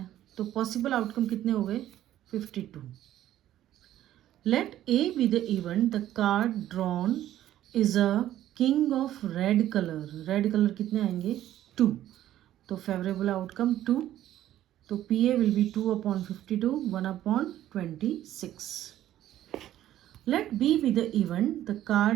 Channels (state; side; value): quieter; left; 12.8 dB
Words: तो पॉसिबल आउटकम कितने हो गए? 52. Let A be the event, the card drawn is a king of red colour. Red colour कितने आएंगे? 2, तो फेवरेबल आउटकम 2. तो PA will be 2/52, 1/26. Let B be the event, the